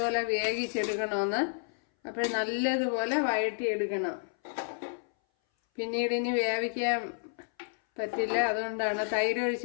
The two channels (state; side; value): silent; right; 57 dB below the other